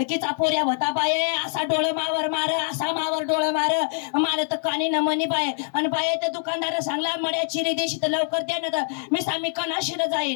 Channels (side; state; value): right; silent; 59 dB below the other